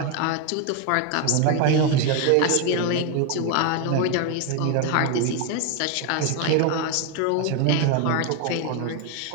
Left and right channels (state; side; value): different; both; correlation 0.01